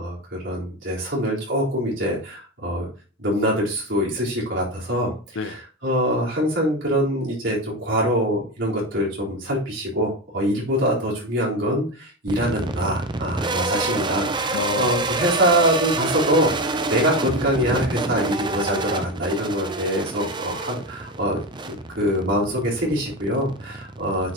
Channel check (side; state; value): both; normal; correlation 0.19